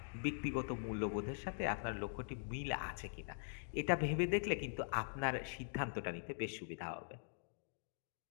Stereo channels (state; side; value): silent; right; digital silence